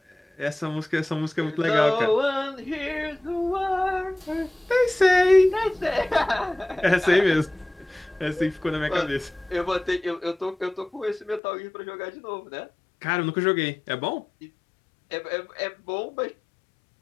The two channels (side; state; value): right; drops out; at 11.4 s